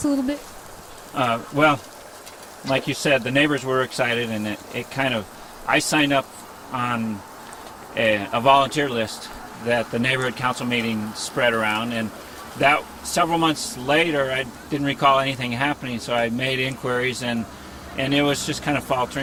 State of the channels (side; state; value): both; identical; correlation 1.00